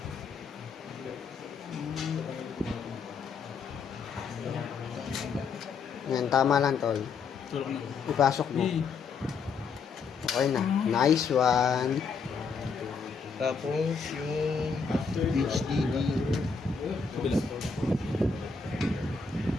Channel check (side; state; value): right; quieter; 5.4 dB